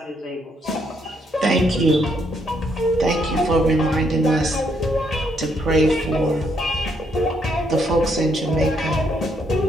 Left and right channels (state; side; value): normal; both; correlation 0.73